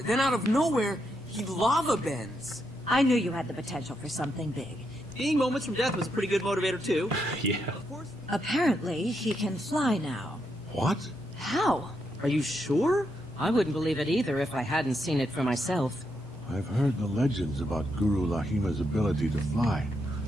Then out of nowhere, he lava bends. I knew you had the potential for something big. Seeing moments from death was a pretty good motivator too. Yeah. Apparently, he can fly now. What? How? Are you sure? I wouldn't believe it either if I hadn't seen it for myself. I've heard the legends about Guru Lahima's ability to fly,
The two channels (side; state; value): both; normal; correlation 0.81